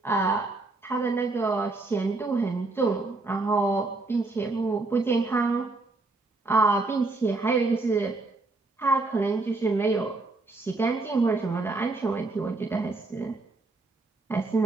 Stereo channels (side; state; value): left; quieter; 3.4 dB